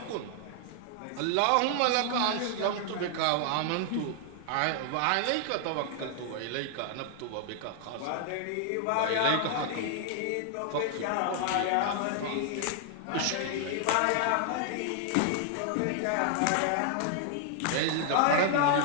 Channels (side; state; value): both; different; correlation 0.00